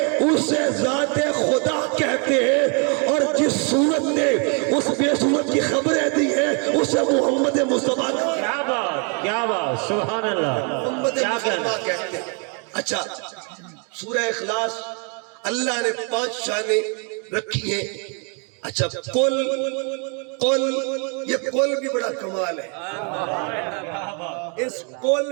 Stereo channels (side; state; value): left; quieter; 36.9 dB